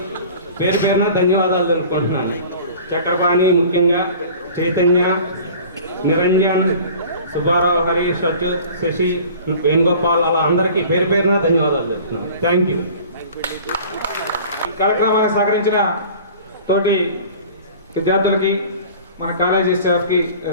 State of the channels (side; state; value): both; inverted; correlation -0.44